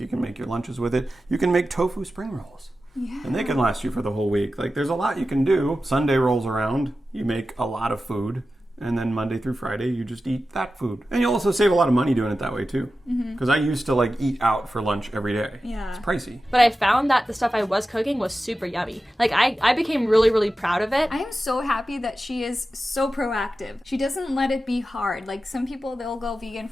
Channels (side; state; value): both; normal; correlation 0.93